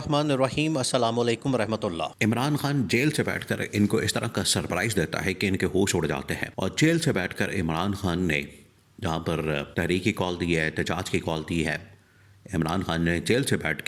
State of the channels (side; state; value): both; identical; correlation 1.00